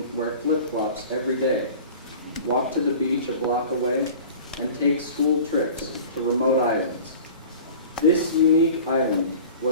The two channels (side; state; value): both; inverted; correlation -0.41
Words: wear flip-flops every day, walk to the beach a block away, and take school trips to remote islands? This unique island